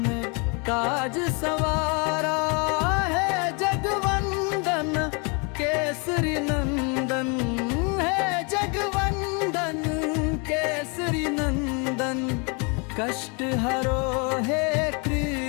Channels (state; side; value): quieter; right; 33.2 dB